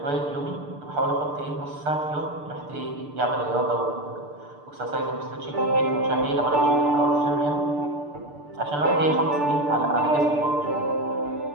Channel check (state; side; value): late; left; 6.8 ms